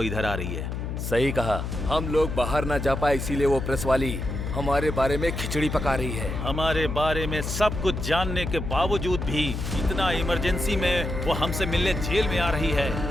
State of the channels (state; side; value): noise; left; hum, 4 dB below the sound